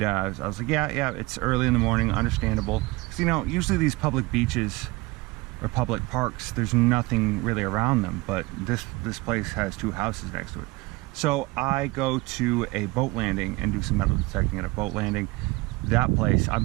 I was like, yeah, it's early in the morning, understandable. Because, usually these public beaches or public parks, there's nothing really around them, but this place has two houses next to it. So I go to a boat landing and do some metal detecting at a boat landing. That place,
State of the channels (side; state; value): left; quieter; 22.7 dB